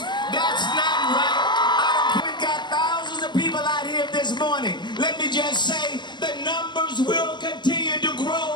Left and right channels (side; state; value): right; late; 0.21 ms